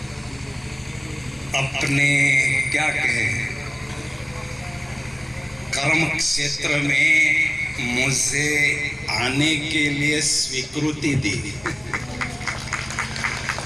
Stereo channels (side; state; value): left; noise; hum, 27 dB below the sound